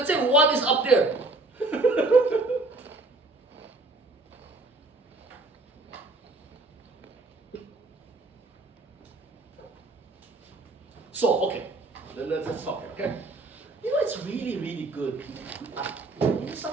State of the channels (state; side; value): quieter; left; 3.0 dB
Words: say 1 is up there. So, okay, let's talk here, okay? It's really, really good.